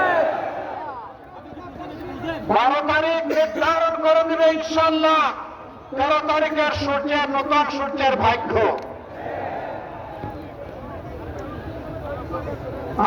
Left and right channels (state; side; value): identical; both; correlation 1.00